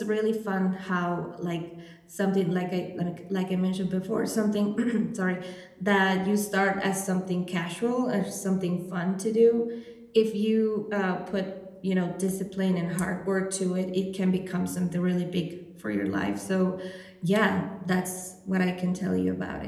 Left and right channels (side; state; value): both; identical; correlation 1.00